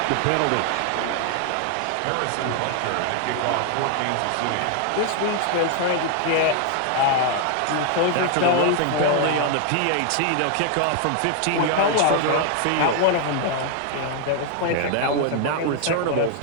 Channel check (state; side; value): different; both; correlation 0.00